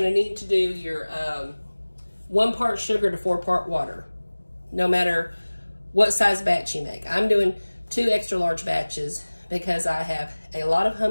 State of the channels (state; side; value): inverted; both; correlation -1.00